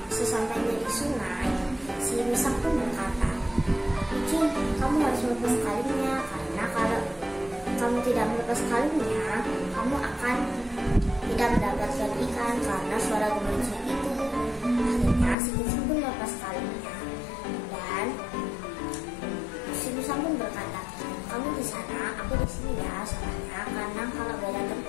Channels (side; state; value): right; drops out; at 15.4 s